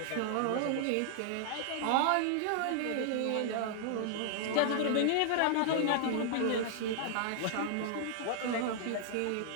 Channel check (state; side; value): different; both; correlation -0.01